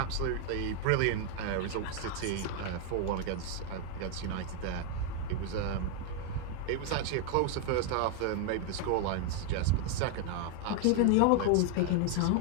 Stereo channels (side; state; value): both; different; correlation 0.00